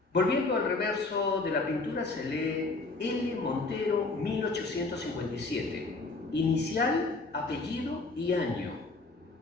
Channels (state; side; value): quieter; right; 3.5 dB